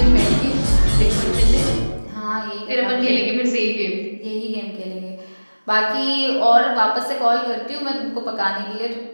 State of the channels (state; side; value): inverted; both; correlation -1.00